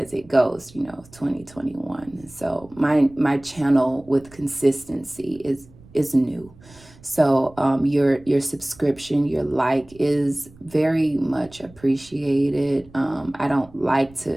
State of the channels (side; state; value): right; noise; rumble, 24 dB below the sound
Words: it goes, you know, 2021. So my channel with consistency is new. So your subscription, your like is very much appreciated. I don't like